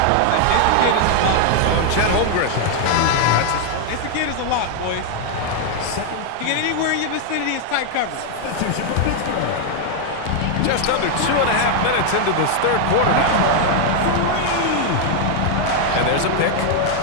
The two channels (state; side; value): different; both; correlation 0.00